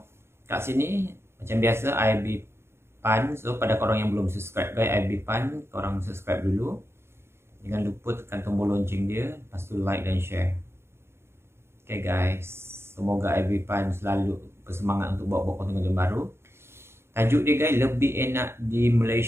kat sini macam biasa IB Pan. So pada korang yang belum subscribe guys, IB Pan, korang subscribe dulu. Jangan lupa tekan tombol lonceng dia, lepas tu like dan share. Okay guys, semoga IB Pan selalu bersemangat untuk buat konten-konten baru. Tajuk dia guys, lebih enak di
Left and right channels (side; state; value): left; late; 0.12 ms